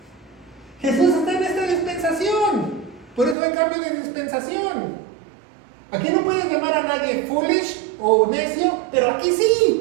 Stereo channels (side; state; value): left; drops out; at 3.4 s